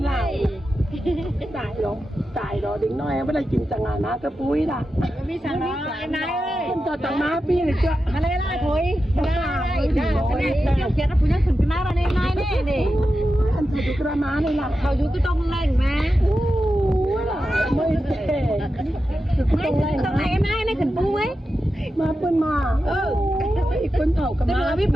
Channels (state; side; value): normal; both; correlation 0.90